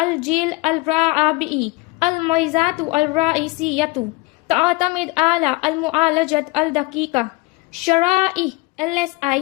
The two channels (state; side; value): quieter; right; 23.4 dB